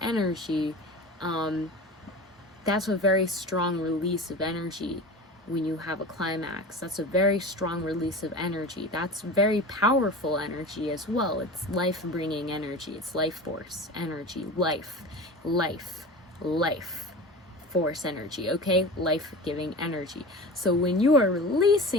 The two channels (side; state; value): both; normal; correlation 0.33